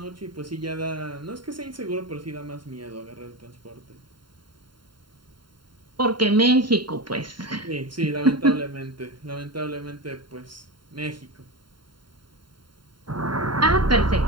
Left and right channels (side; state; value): left; late; 0.72 ms